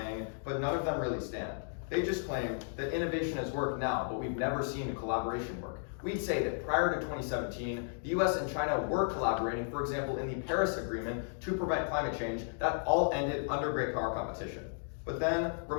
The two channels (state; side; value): silent; right; digital silence